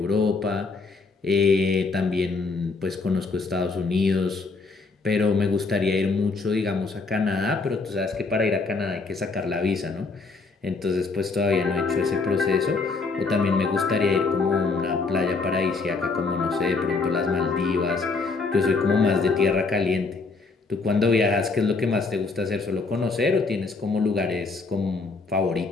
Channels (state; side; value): quieter; right; 4.1 dB